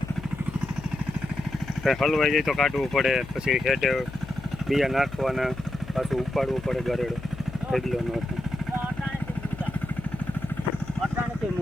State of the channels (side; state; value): left; noise; hum, 13 dB below the sound